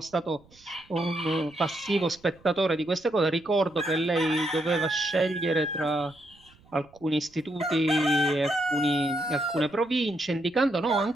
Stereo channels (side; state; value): right; noise; rumble, 29 dB below the sound